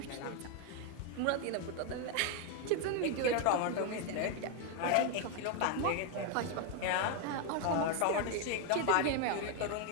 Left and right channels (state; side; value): different; both; correlation 0.01